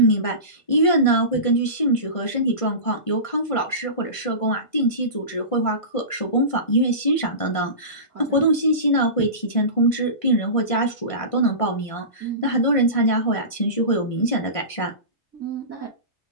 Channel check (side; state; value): right; late; 1.5 ms